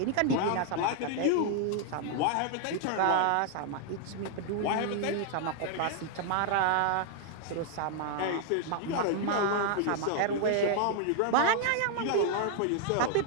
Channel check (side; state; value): both; different; correlation 0.00